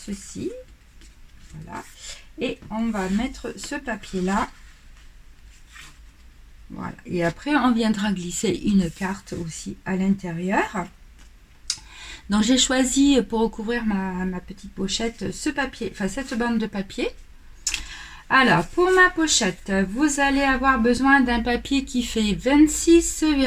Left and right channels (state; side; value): identical; both; correlation 1.00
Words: Voilà. Et on va mettre ce papier là. Voilà. Et après, on viendra glisser une carte aussi à l'intérieur. Donc, j'ai choisi pour recouvrir ma petite pochette ce papier, enfin cette bande de papier. Alors, pour ma pochette, vous allez avoir besoin d'un papier qui fait